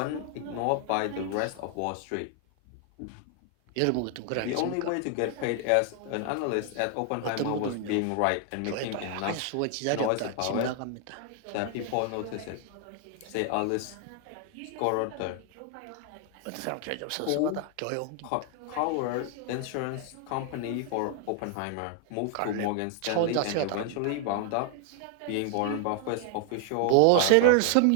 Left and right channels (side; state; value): both; different; correlation 0.00